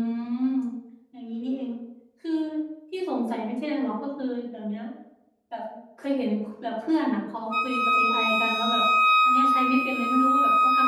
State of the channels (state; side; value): identical; both; correlation 1.00